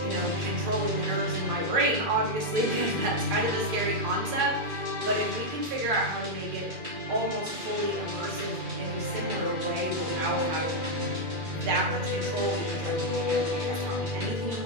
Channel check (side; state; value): left; late; 2.4 ms